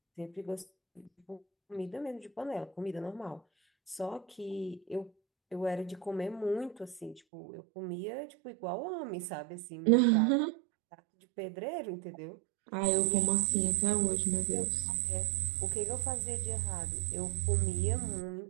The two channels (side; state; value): left; drops out; at 7.2 s